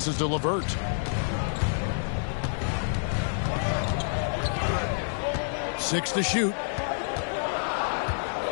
to LeVert. Six to shoot.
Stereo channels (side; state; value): right; silent; 58 dB below the other